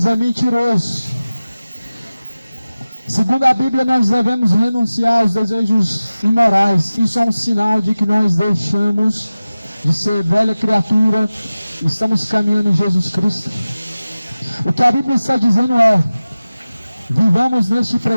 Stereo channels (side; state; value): both; inverted; correlation -0.96